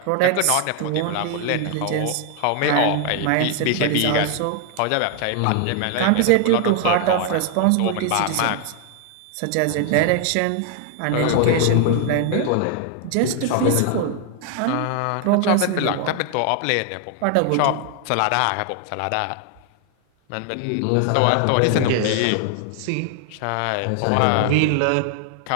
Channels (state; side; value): different; both; correlation 0.00